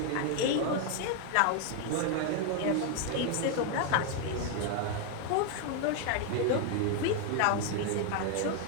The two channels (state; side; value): different; both; correlation 0.01